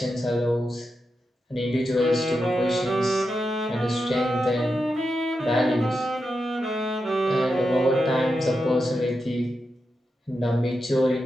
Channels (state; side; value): normal; both; correlation 0.88